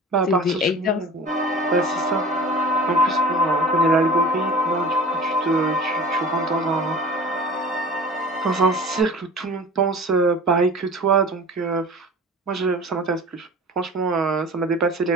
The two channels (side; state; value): both; normal; correlation 0.39